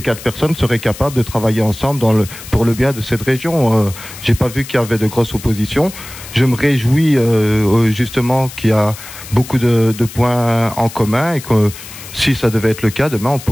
4 personnes seraient capables de travailler ensemble pour le bien de cette région. J'ai pas vu qu'il y avait de grosses oppositions. Je me réjouis justement qu'il y a beaucoup de points en commun, et que si ça devait être le cas, demain on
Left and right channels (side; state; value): left; noise; hiss, 14 dB below the sound